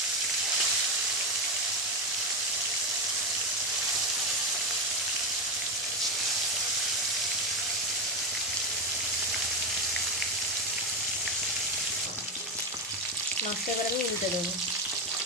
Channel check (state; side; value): normal; both; correlation 0.13